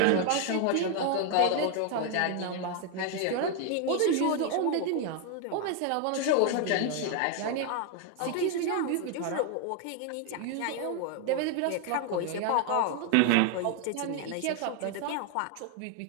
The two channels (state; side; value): different; both; correlation 0.01